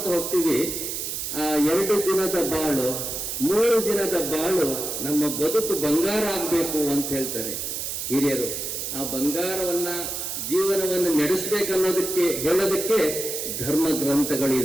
ಹೋಗ್ತೀವಿ. ಆ 2 ದಿನದ ಬಾಳು 3 ದಿನದ ಬಾಳು ನಮ್ಮ ಬದುಕು ಬಂಗಾರ ಆಗ್ಬೇಕು ಅಂತ ಹೇಳ್ತಾರೆ ಹಿರಿಯರು. ಆ ಬಂಗಾರವನ್ನ ಜೀವನವನ್ನು ನಡೆಸಬೇಕನ್ನೋದಕ್ಕೆ ಹೇಳೋದಕ್ಕೆ ಧರ್ಮ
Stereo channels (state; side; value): noise; right; hiss, 4 dB below the sound